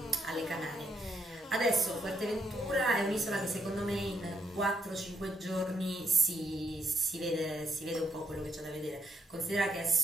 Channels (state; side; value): normal; both; correlation 0.75